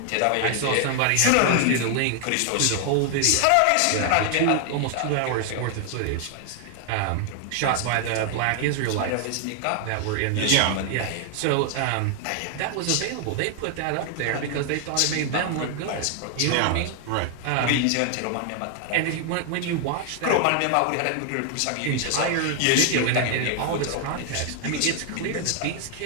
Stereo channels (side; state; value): both; different; correlation 0.00